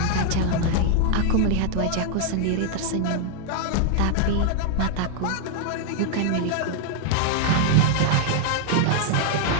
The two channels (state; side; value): different; both; correlation 0.00